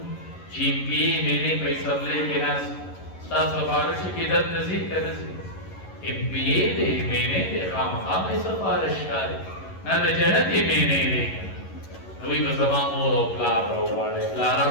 چی پی مینے بائی سبلے کے ناس ستا سفارش کی در نزید کا نزید امپیے دے مینے دے خام بائی سفارش کاری نا دا جنت ہی مینے دے نوی بزمان مور او پلار رو وارے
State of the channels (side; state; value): right; late; 11 ms